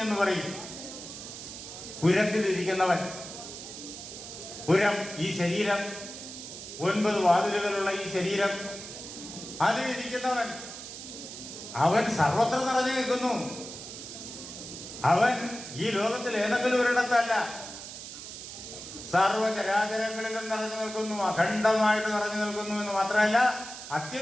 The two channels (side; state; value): right; noise; hiss, 11 dB below the sound